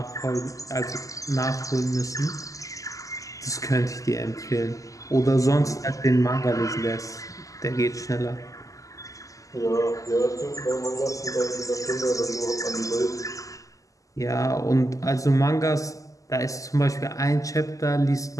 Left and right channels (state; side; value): late; right; 0.16 ms